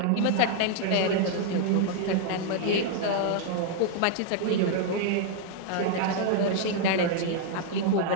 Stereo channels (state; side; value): different; both; correlation 0.00